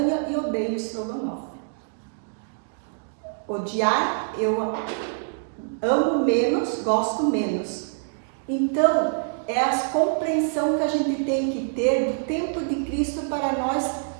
e odeio estrogonofe. Odiar, eu amo menos, gosto menos. Então, é a compreensão que a gente tem que ter do tempo de Cristo para nós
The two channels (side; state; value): left; silent; digital silence